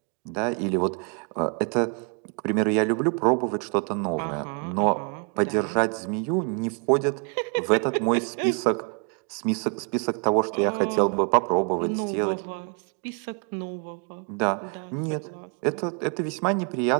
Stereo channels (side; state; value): left; quieter; 37.8 dB